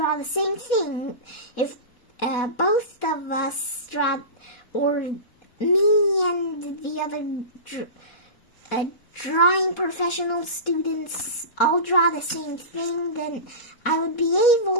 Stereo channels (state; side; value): late; right; 4.1 ms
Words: the same thing, if both of us draw, or me and the other drawing professional students all draw the same thing, then I would be